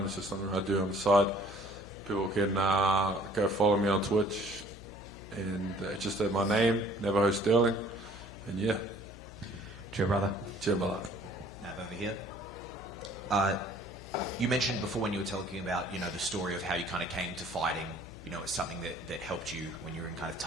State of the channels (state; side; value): noise; left; hum, 16 dB below the sound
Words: It's just something I do on the side. People can go follow me on Twitch, and it's just my name, Navajo Stirling, and yeah. Cheer, brother. Cheer, brother. Nav over here. You mentioned before when you were talking about, you know, the story of how you kind of came to fighting. You know, it's something that helped you when you were in kind of